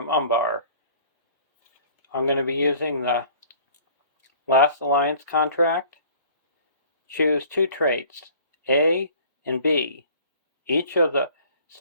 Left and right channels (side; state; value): both; inverted; correlation -0.50